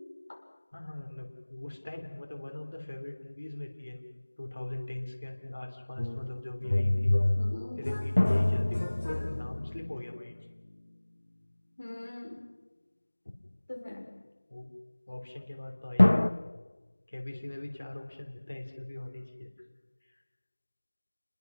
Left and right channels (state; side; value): inverted; both; correlation -1.00